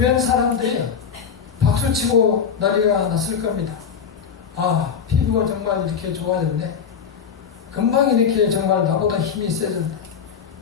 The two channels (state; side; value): quieter; right; 6.9 dB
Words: 사람들이 박수치고 난리가 났을 겁니다. 아, 피부가 정말 이렇게 좋아졌네. 금방 이렇게 정말 나보다 힘이 세졌네.